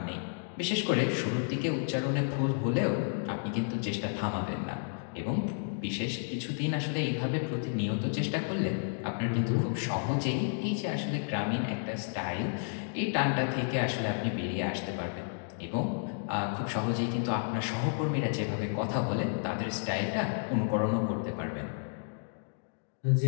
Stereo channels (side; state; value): right; silent; digital silence